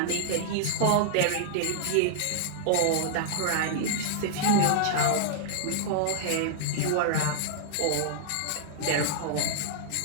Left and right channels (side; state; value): both; different; correlation -0.01